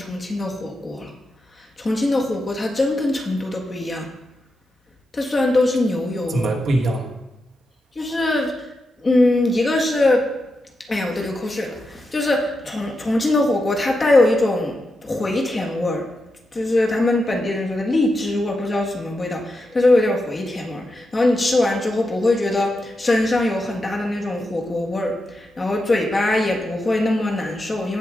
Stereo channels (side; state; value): both; normal; correlation 0.87